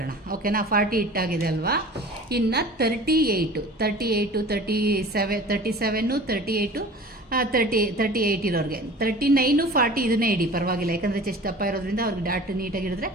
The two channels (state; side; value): normal; both; correlation 0.41